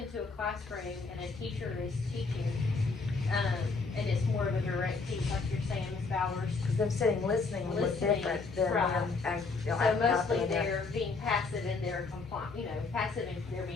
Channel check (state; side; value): quieter; right; 4.2 dB